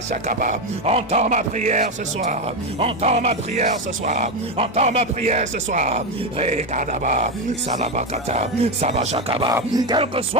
Entends ma prière ce soir. Entends ma prière ce soir. Entends ma prière ce soir. Rekadaba, Salabakata, Sabashakaba. Quel que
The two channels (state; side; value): normal; both; correlation 0.11